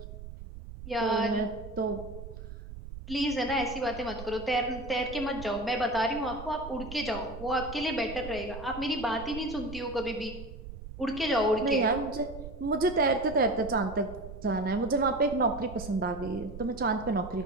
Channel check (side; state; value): right; noise; rumble, 12 dB below the sound